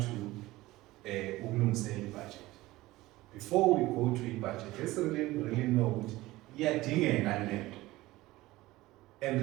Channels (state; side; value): quieter; left; 18.3 dB